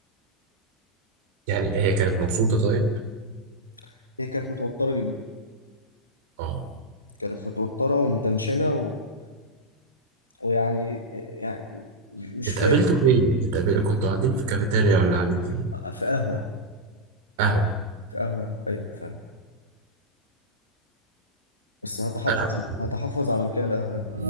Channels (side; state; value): both; normal; correlation -0.09